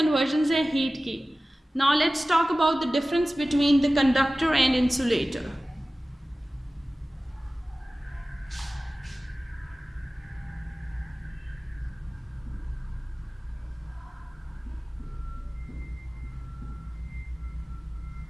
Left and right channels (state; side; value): normal; both; correlation 0.97